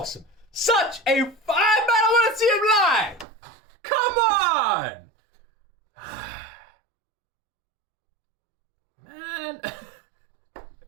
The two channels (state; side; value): drops out; left; at 3.2 s